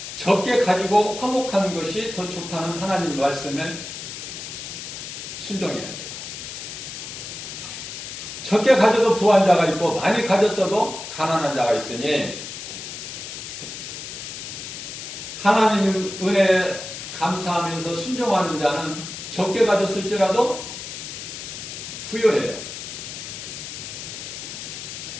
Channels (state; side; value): noise; left; hiss, 9 dB below the sound